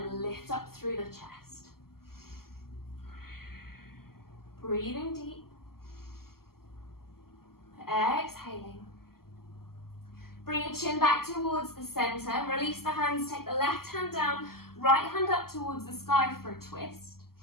lift up through the chest. Breathing deep, exhaling. Bring your chin back towards the center, release the hands, take the left hand down, right hand up towards the sky for a twist.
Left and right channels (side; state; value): right; late; 0.93 ms